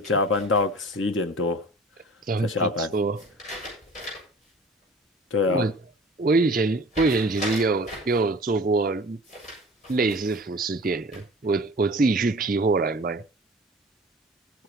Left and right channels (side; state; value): both; normal; correlation 0.43